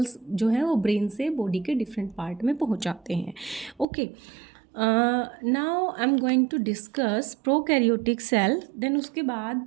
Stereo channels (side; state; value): left; drops out; at 3.9 s